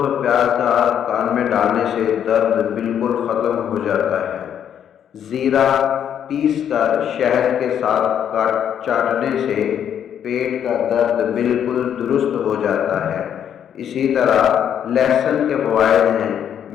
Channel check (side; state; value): right; quieter; 9.2 dB